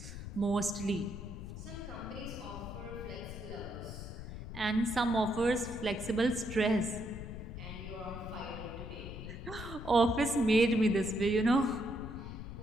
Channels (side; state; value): left; noise; rumble, 9 dB below the sound